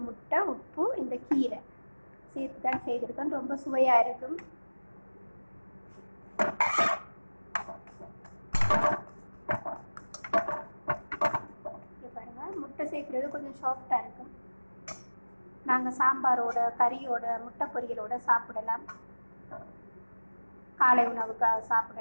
முட்டை, உப்பு, இந்த கீரை சேர்த்து தான் செய்திருக்கேன். ரொம்ப சுவையாக இருக்கும். முட்டை சேர்க்குறது கொஞ்சம் சாஃப்டாக இருக்கும். நாங்கள் சாம்பாரோட, கறியோட, முட்டை பொரியலோட சாப்பிடலாம். காலை உணவுக்காக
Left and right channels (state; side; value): inverted; both; correlation -1.00